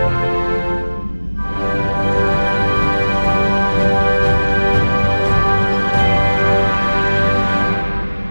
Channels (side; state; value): both; inverted; correlation -1.00